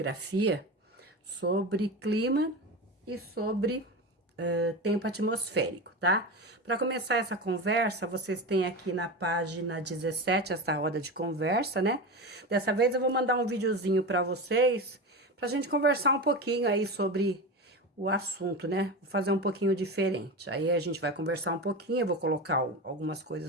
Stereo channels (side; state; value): both; normal; correlation 0.23